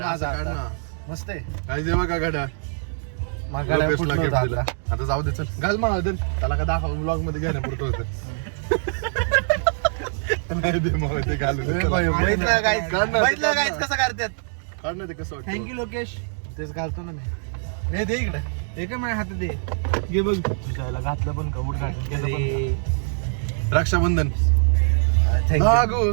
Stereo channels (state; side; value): silent; left; digital silence